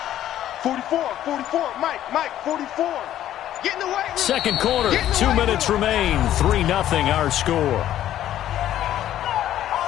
44, Mike, 44. Get in the way. Second quarter, 2 minutes remain. 3-0 our score.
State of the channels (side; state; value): right; quieter; 12.2 dB